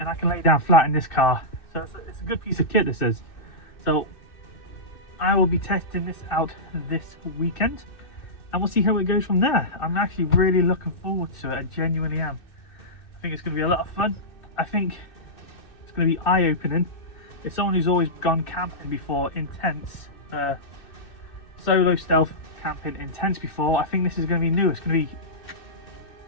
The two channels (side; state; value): right; late; 2.6 ms